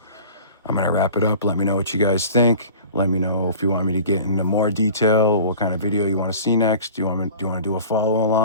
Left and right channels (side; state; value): both; inverted; correlation -0.41